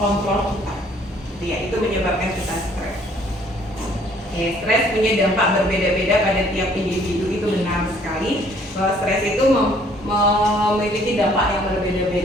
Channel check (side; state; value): both; normal; correlation 0.61